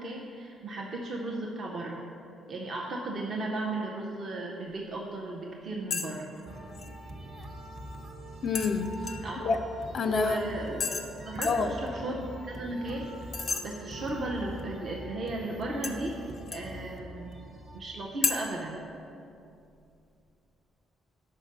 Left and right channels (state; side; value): normal; both; correlation 0.71